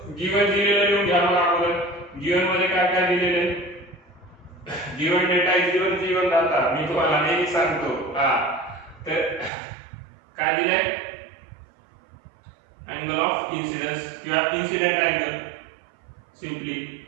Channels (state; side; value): drops out; left; at 9.5 s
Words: गिवन दिलेलं लिहून घ्या मला अगोदर. गिवन मध्ये काय काय दिलेले given data is given given data मी तुम्हाला नेहमी सांगतो हा. तर काय दिलंय angle of incidence किंवा incident angle simply